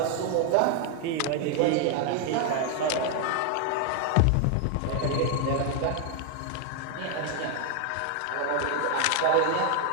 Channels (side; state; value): both; different; correlation 0.00